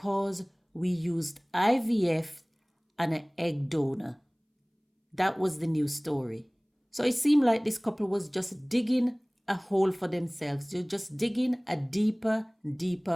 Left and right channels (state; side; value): identical; both; correlation 1.00